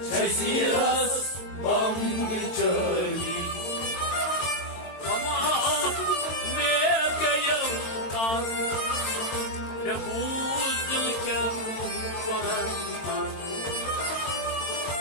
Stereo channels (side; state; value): right; late; 22 ms